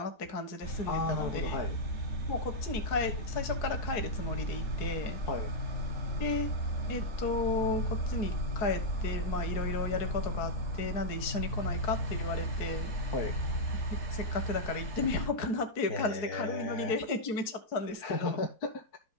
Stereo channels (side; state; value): right; late; 4.7 ms